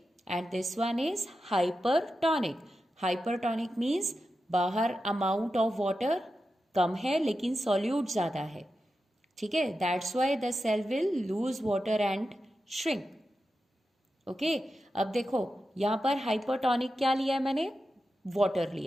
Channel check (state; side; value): normal; both; correlation 0.90